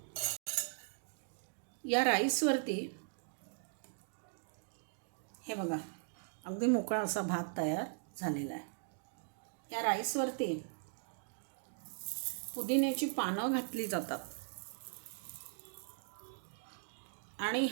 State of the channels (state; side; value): silent; left; digital silence